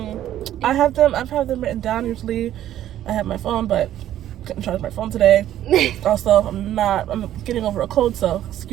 I've had them written down. Usually, I have my phone, but couldn't charge my phone today. Also, I'm getting over a cold, so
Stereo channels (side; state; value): left; quieter; 12.2 dB